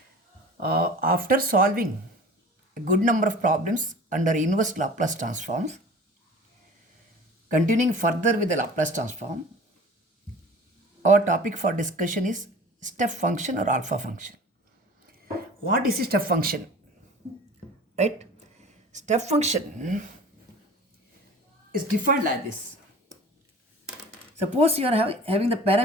After solving a good number of problems under inverse Laplace transforms, continuing further with the Laplace transform, our topic for discussion is step function or alpha function. What is a step function? Right? Step function is defined like this. Suppose you are having the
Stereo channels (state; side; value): normal; both; correlation 0.42